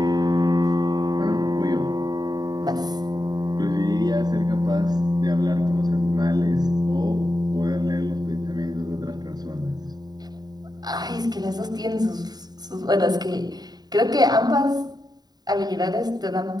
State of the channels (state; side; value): late; left; 0.20 ms